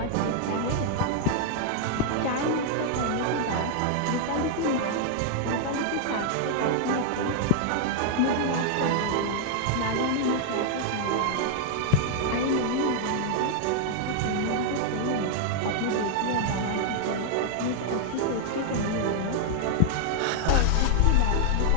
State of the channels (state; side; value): different; both; correlation -0.01